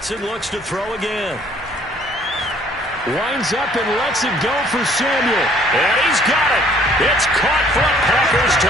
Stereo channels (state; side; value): normal; both; correlation 0.59